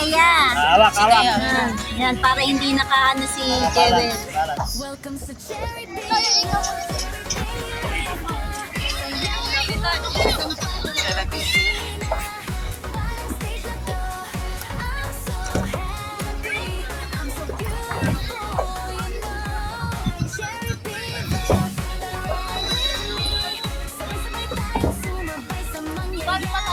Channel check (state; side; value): identical; both; correlation 1.00